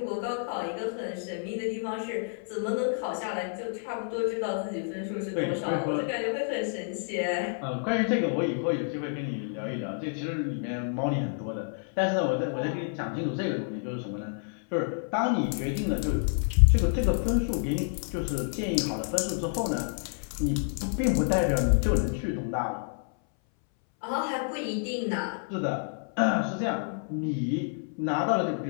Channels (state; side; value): silent; right; 58 dB below the other